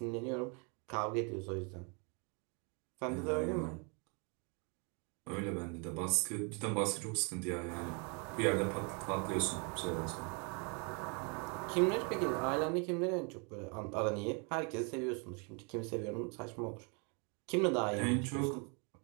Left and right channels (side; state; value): left; quieter; 34.9 dB